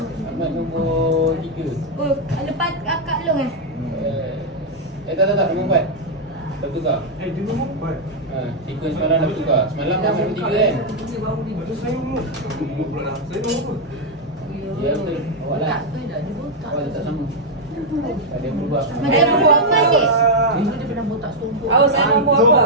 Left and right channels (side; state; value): both; normal; correlation -0.02